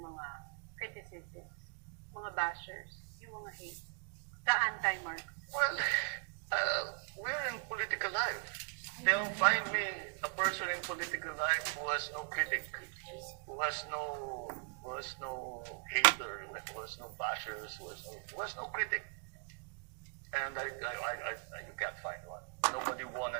mga criticisms, mga bashers, yung mga hate, the anti-Marcos? Well, we're in political life. They'll find me a person in political life who has no critic, who has no hater, who has no bashers, who has no critic. And you can't find one. Nobody won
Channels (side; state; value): left; quieter; 39.9 dB